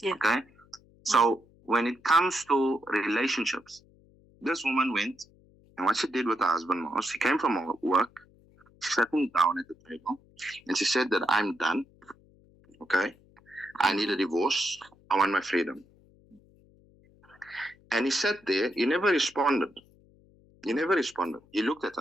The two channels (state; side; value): noise; left; hum, 29 dB below the sound